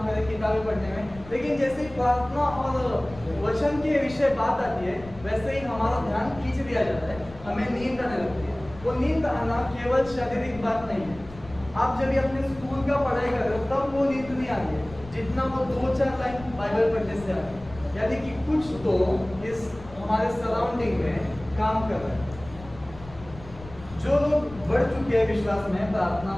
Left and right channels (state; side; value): noise; left; rumble, 17 dB below the sound